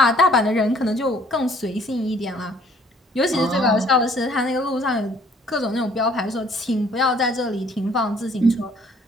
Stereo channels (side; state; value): both; normal; correlation 0.59